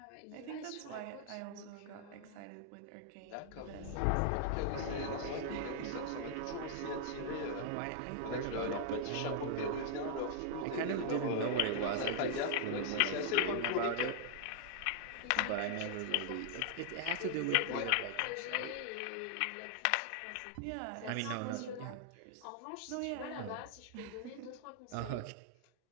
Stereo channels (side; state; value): both; different; correlation -0.01